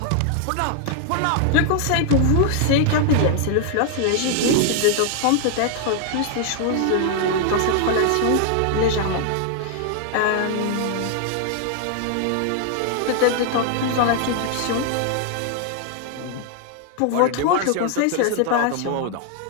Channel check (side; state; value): both; different; correlation 0.00